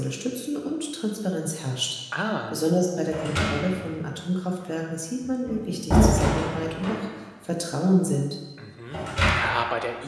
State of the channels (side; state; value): both; identical; correlation 1.00